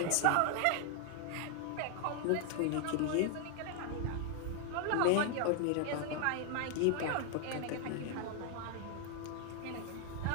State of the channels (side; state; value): both; different; correlation 0.00